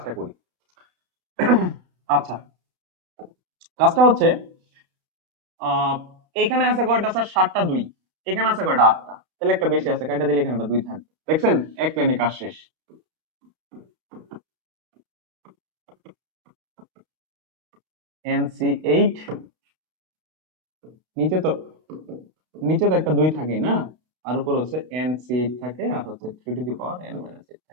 করি। আচ্ছা, কাজটা হচ্ছে এখানে আছে কয়টা স্যার? 7টা 2, এখানে আছে কয়টা? 8টা, তাহলে একটা বেশি আছে, কাটা দিলে এখানে একটা 2 থাকবে। দেখছেন এক লাইনে কাজ শেষ। NC8 নিচে তো একটা 2 থাকে না, আর উপরে হচ্ছে NC8 থাকে, আর হচ্ছে 3 to the power n minus 8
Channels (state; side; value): late; left; 32 ms